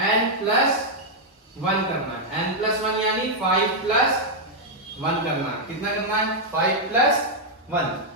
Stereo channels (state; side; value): normal; both; correlation -0.03